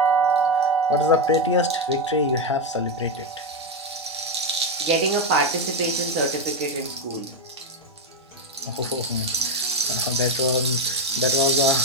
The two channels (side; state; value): both; normal; correlation 0.06